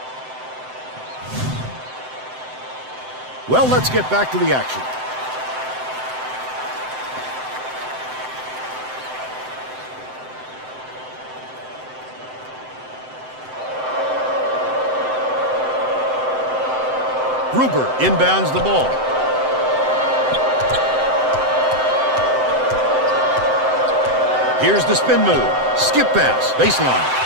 Well, let's get back to the action. Gruber inbounds the ball. Here's the spin move. Skip pass. Baseline.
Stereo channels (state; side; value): late; left; 7.8 ms